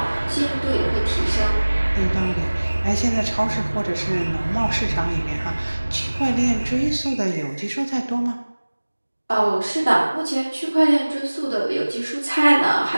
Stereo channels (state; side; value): inverted; both; correlation -1.00